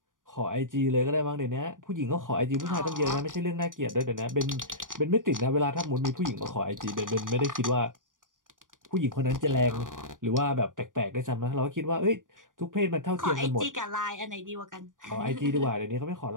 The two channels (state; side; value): late; left; 0.88 ms